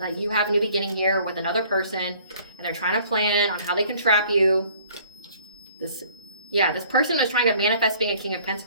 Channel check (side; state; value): both; inverted; correlation -0.55